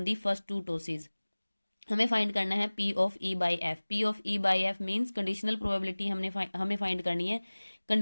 the first 2 tosses. हमें फाइंड करना है P of E by F. P of E by F means conditional probability हमें फाइंड करनी है।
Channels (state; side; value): inverted; both; correlation -1.00